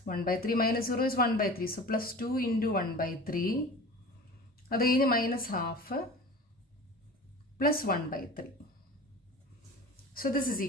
1/3 minus 0 is 1/3. സോ പ്ലസ് 2 into 1/3. അത് കഴിഞ്ഞ് minus half plus 1/3. So this is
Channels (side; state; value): both; normal; correlation 0.37